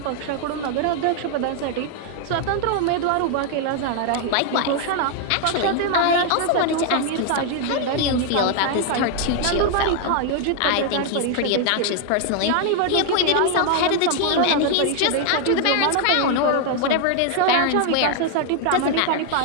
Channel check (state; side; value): different; both; correlation 0.00